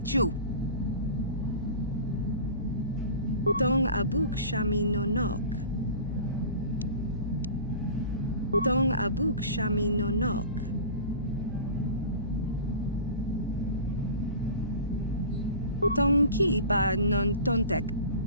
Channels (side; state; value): both; inverted; correlation -0.37